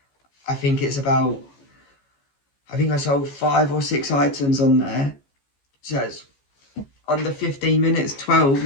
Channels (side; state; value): right; late; 15 ms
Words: I think it's about, I think I sold 5 or 6 items on there. So it's under 15 minutes, 12